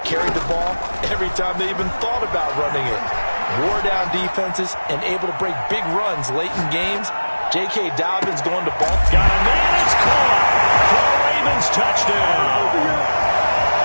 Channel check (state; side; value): inverted; both; correlation -1.00